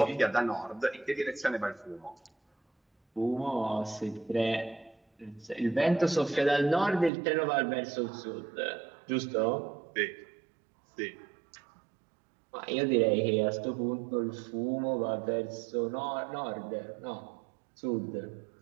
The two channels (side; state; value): left; drops out; at 7.1 s